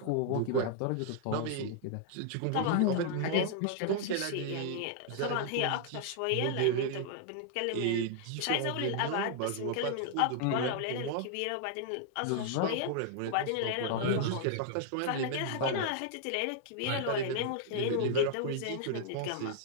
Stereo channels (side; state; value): both; different; correlation -0.01